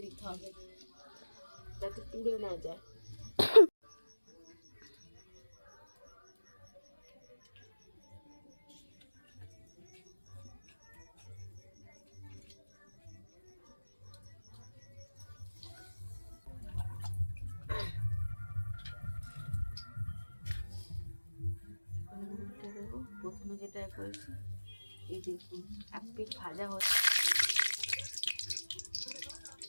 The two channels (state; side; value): inverted; both; correlation -1.00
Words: দিতে হবে, যাতে পুড়ে না যায়। প্রথমে যেটা করেছি, এই দেখুন এক পিঠ ভাজা হচ্ছে,